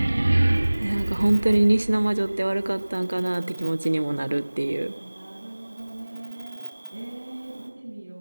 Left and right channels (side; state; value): both; inverted; correlation -1.00